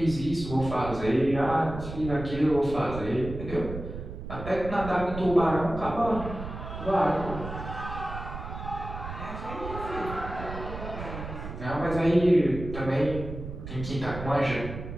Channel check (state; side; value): noise; right; rumble, 9 dB below the sound